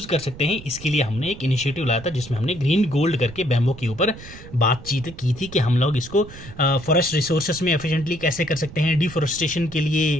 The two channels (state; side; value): noise; right; rumble, 16 dB below the sound